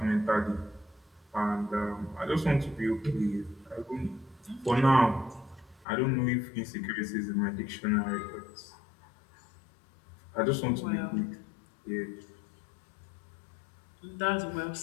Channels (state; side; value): drops out; right; at 5.9 s